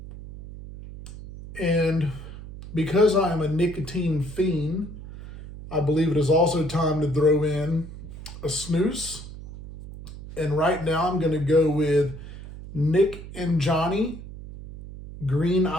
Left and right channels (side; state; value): right; noise; hum, 13 dB below the sound